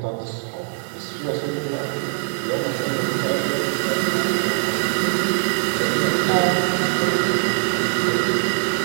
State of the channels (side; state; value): left; silent; digital silence